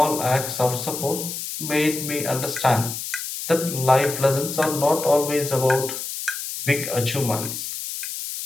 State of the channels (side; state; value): left; noise; hiss, 6 dB below the sound